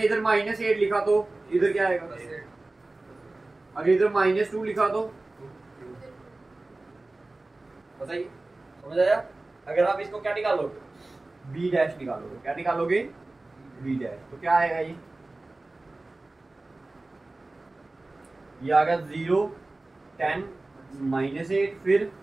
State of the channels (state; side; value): quieter; left; 3.0 dB